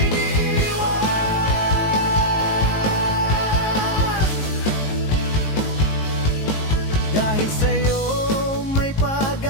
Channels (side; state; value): right; late; 19 ms